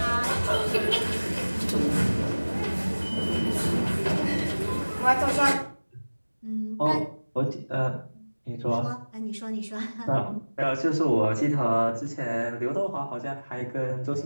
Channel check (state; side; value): inverted; both; correlation -1.00